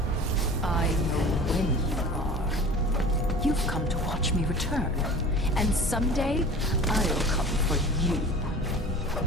I know when you are. You've come to watch me return, and someday I'll come for you.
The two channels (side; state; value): both; normal; correlation 0.39